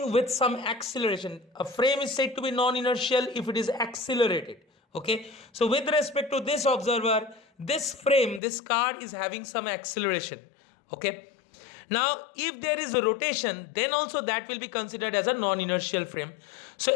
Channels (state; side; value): drops out; right; at 8.4 s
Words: with some acceleration. A frame is said to be non-inertial if it is accelerated. Okay, so with respect to this observer, this frame, this car is having some acceleration. Okay, now if there is a rotation, then also that will be considered as a non-inertial frame.